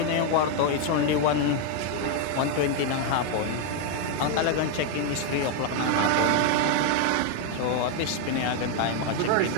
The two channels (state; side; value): different; both; correlation 0.01